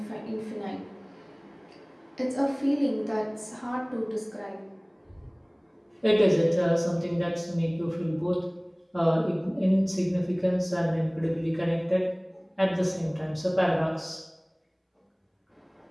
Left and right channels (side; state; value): both; identical; correlation 1.00